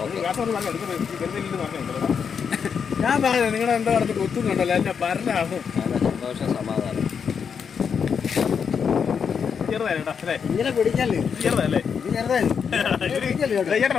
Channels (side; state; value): right; quieter; 6.7 dB